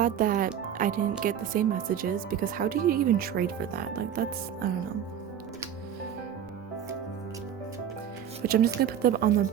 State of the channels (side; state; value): left; quieter; 9.2 dB